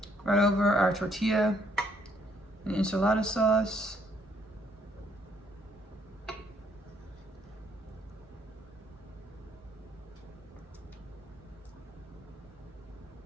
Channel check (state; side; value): normal; both; correlation 0.69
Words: Right over our tortilla and enchilada sauce.